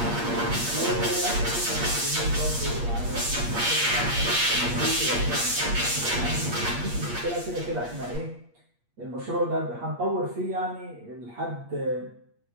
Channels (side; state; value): left; late; 8.5 ms